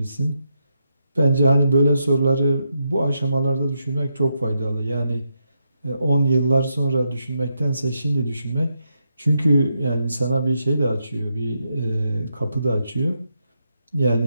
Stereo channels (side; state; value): both; inverted; correlation -0.83